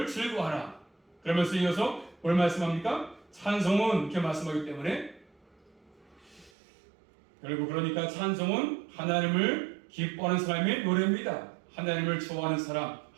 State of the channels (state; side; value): drops out; left; at 6.5 s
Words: 즐거워하라. 그러면서 이어서 뭘 말씀합니까? 찬송은 이렇게 말씀하기 때문에 결국 그러니까 찬송은 하나님을 기뻐하는 사람의 노래입니다. 하나님을 좋아하는 사람,